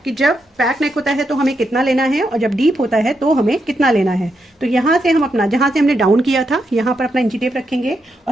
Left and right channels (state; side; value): normal; both; correlation 0.82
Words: कि जब बैक नेक होता है तो हमें कितना लेना है और जब डीप होता है तो हमें कितना लेना है। तो यहाँ से हम अपना, जहाँ से हमने डाउन किया था यहाँ पर अपना इंची टेप रखेंगे